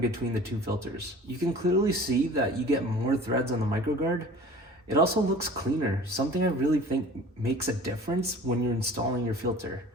the two filters. You can clearly see that you get more threads on the MicroGuard. It also looks cleaner, something I really think makes a difference when you're installing your filter.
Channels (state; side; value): normal; both; correlation 0.44